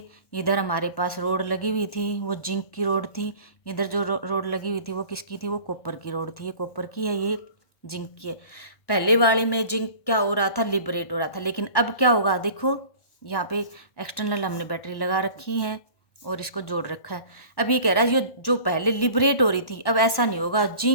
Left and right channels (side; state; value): right; late; 1.1 ms